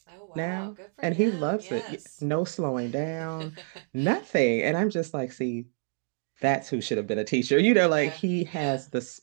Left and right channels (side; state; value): left; silent; digital silence